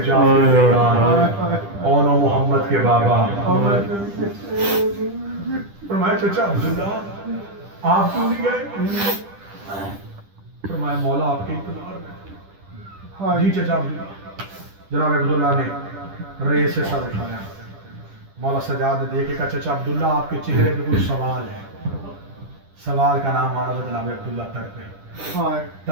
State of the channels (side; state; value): left; late; 10 ms